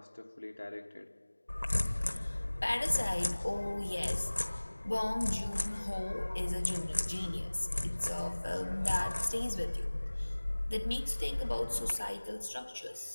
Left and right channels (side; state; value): both; inverted; correlation -1.00